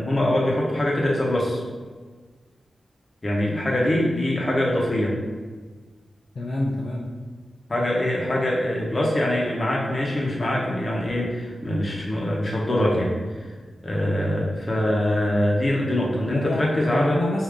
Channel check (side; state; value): both; normal; correlation 0.92